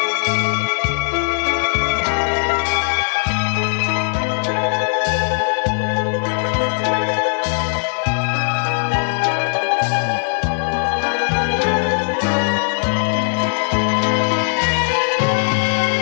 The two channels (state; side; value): silent; right; 67 dB below the other